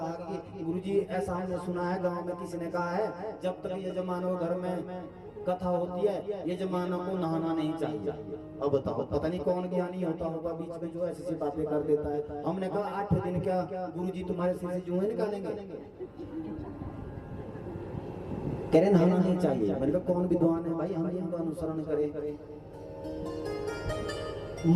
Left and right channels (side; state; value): both; identical; correlation 1.00